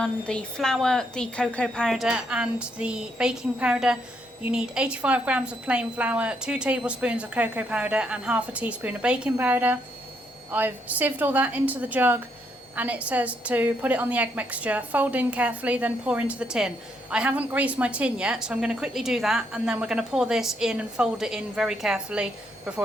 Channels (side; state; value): both; normal; correlation 0.75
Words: the flour, the cocoa powder and the baking powder. You need 85 grams of plain flour, 2 tablespoons of cocoa powder and half a teaspoon of baking powder. I've sieved all that into the jug and it says to put it on the egg mixture, fold in carefully, then pour into the tin. I haven't greased my tin yet, so I'm going to quickly do that and then we're going to pour this in and fold it in very carefully